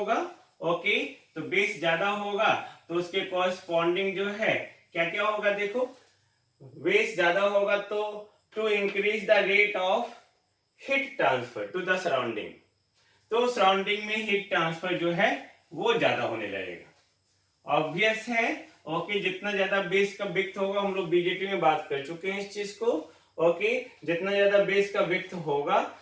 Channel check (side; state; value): both; identical; correlation 1.00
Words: okay, तो base ज्यादा होगा तो उसके कॉरेस्पॉन्डिंग जो है क्या क्या होगा, देखो, बेस ज्यादा होगा तो to increase the rate of heat transfer to the surrounding, तो सराउंडिंग में हीट ट्रांसफर जो है वो ज्यादा होने लगेगा. ऑब्वियस है, ओके, जितना ज्यादा बेस का विड्थ होगा, हम लोग बीजेटी में बात कर चुके हैं इस चीज को, ओके, जितना ज्यादा बेस का विड्थ होगा